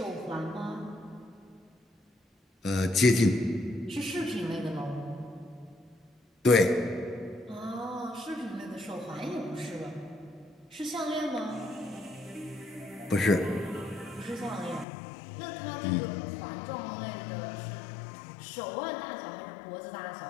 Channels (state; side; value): drops out; right; at 14.9 s